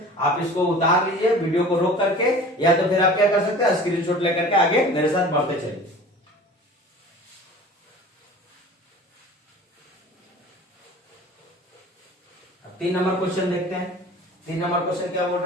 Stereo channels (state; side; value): normal; both; correlation 0.42